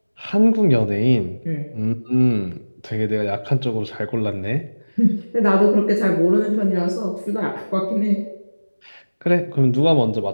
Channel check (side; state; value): both; inverted; correlation -1.00